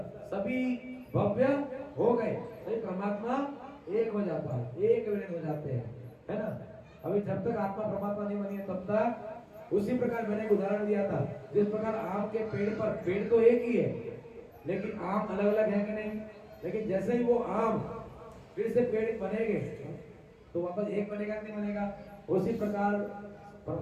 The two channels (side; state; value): both; identical; correlation 1.00